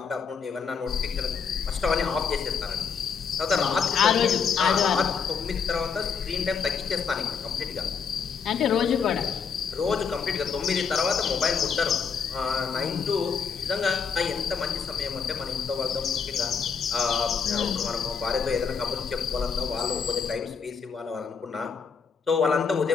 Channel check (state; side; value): quieter; right; 6.0 dB